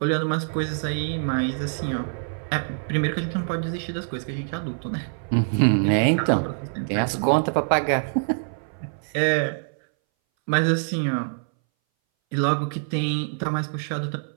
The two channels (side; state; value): left; silent; 60 dB below the other